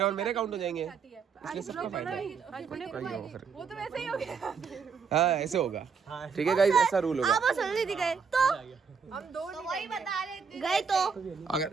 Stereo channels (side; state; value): left; quieter; 5.9 dB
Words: और मेरे काउंट हो जाएंगे, इसलिए सबका फायदा है। वही हो फिर, वो तो वैसे ही हो गया। हाँ ऐसे होगा, ठीक है गाइस, ऐसा रूल होगा। गए तो हम दो वही बता रहे थे। गए तो